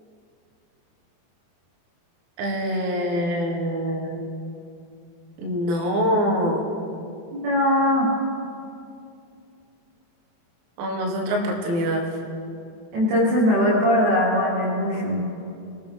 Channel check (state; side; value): late; left; 24 ms